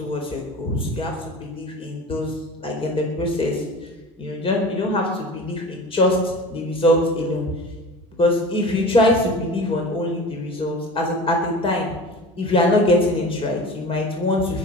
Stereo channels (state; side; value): normal; both; correlation 0.36